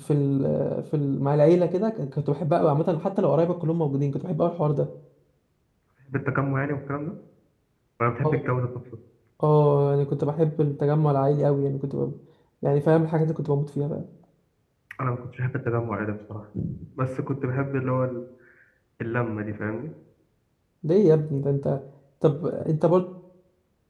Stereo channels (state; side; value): identical; both; correlation 1.00